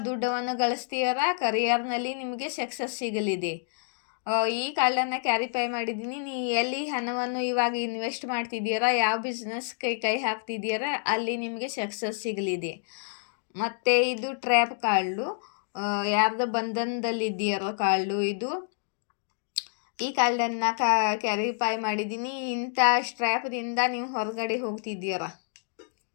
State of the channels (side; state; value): right; silent; digital silence